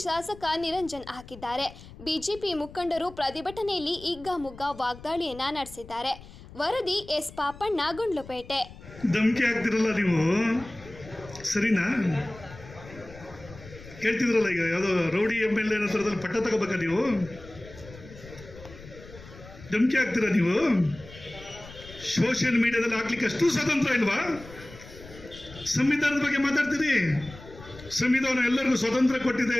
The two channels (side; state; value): left; noise; rumble, 18 dB below the sound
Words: ಶಾಸಕ ನಿರಂಜನ್ ಹಾಕಿದ್ದಾರೆ. ಬಿಜೆಪಿ ಮುಖಂಡರು ಪ್ರತಿಭಟನೆಯಲ್ಲಿ ಹಿಗ್ಗಾಮುಗ್ಗಾ ವಾಗ್ದಾಳಿಯನ್ನ ನಡೆಸಿದ್ದಾರೆ. ವರದಿ ಎಸ್ ಪಾಪಣ್ಣ, ಗುಂಡ್ಲುಪೇಟೆ. ಧಮಕಿ ಹಾಕ್ತಿರಲ್ಲ ನೀವು, ಸರಿನಾ? ಹೇಳ್ತಿದ್ರಲ್ಲ, ಈಗ ಯಾವುದೋ ರೌಡಿ MLA ಹತ್ರದಲ್ಲಿ ಪಟ್ಟ ತಗೋಬೇಕಾ ನೀವು? ಧಮಕಿ ಹಾಕ್ತೀರಾ ನೀವು? ಸೋಷಿಯಲ್ ಮೀಡಿಯಾದಲ್ಲಿ ಹಾಕ್ಲಿಕ್ಕೆ ಅಷ್ಟು ಸ್ವತಂತ್ರ ಇಲ್ವಾ? ಸಂವಿಧಾನದ ಬಗ್ಗೆ ಮಾತಾಡ್ತೀರಿ. ಸಂವಿಧಾನ ಎಲ್ಲರಿಗೂ ಸ್ವತಂತ್ರ ಕೊಟ್ಟಿದೆ,